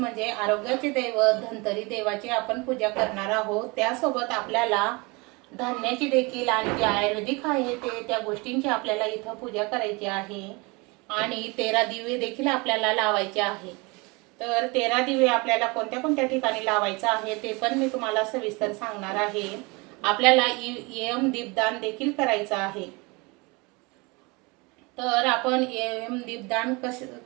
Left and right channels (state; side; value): quieter; left; 26.9 dB